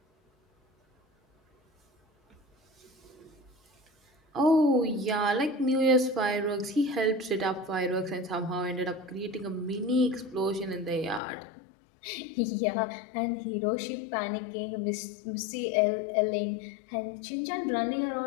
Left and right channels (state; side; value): drops out; right; at 11.2 s